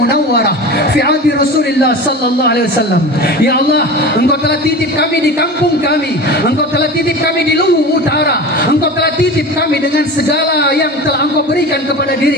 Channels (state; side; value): normal; both; correlation 0.32